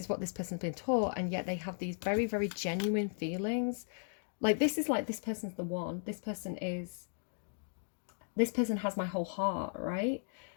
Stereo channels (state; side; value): silent; right; digital silence